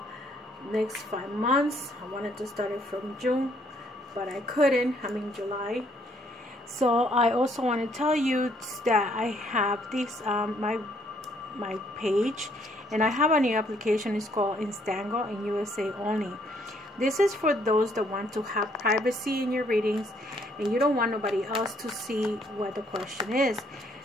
next 5 months. I wanted to start it from June, but I couldn't. I'm in July. So I also want to tell you that I have this my page, and I have a new application. It's called Instango in USA only. This is for those that want to have privacy in your readings and you don't want nobody else to see what the question is.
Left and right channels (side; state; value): both; normal; correlation 0.67